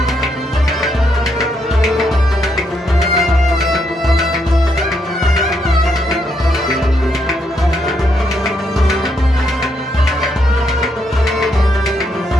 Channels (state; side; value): normal; both; correlation 0.77